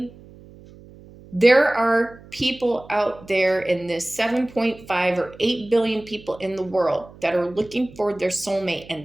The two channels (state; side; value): noise; right; hum, 21 dB below the sound